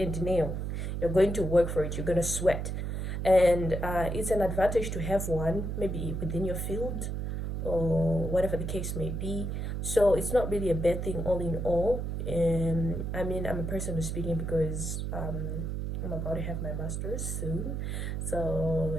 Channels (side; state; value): right; noise; hum, 3 dB below the sound